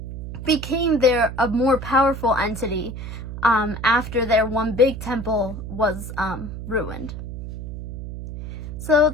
became a more powerful entity after their one big temple was ruined. So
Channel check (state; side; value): noise; right; hum, 8 dB below the sound